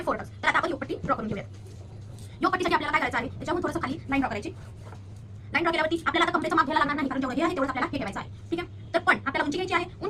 4 टक्स. तर आता आपण योगपट्टी ड्रॉ करून घेऊया. योगपट्टीसाठी आपल्याला काय करायचं आहे, त्याच्याहून थोडंसं खाली लाईन ड्रॉ करायची. लाईन ड्रॉ केल्यावरती आपल्याला आता कमरेचं माप घ्यायला लागणार नाही, कारण जेवढं हे आहे तेवढं आपल्याला हे ठेवायचं आहे. ठीक आहे. तर पण आपल्याला उंची घ्यायची आहे.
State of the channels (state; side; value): identical; both; correlation 1.00